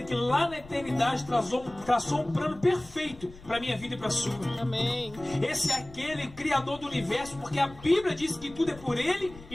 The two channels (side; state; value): left; noise; rumble, 19 dB below the sound